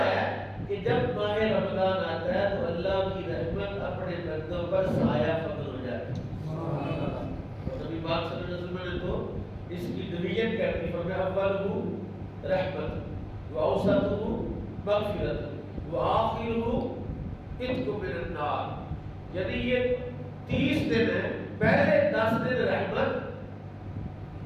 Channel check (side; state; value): both; identical; correlation 1.00